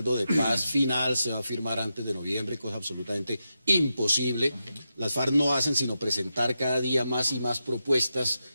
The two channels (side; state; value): both; inverted; correlation -0.88